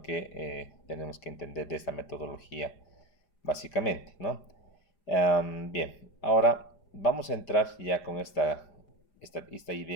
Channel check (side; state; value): right; late; 4.9 ms